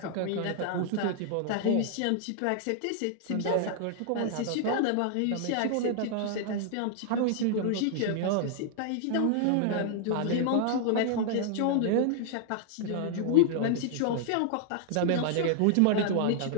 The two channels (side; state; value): both; different; correlation 0.00